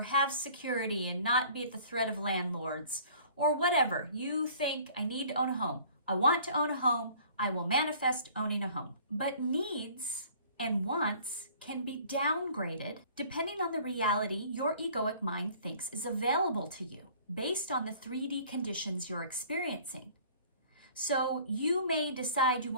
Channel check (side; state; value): both; inverted; correlation -0.51